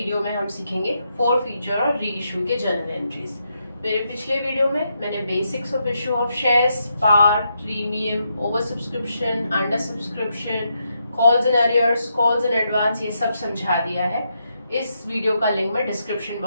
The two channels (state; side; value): inverted; both; correlation -0.81